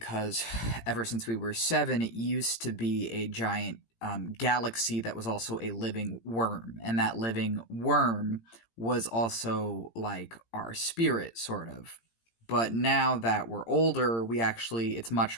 ever since we were seven, it used to be a giant galaxy that was also a living worm. And that living worm was also like our spirit, sort of. But now that we're older, it's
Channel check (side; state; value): right; late; 18 ms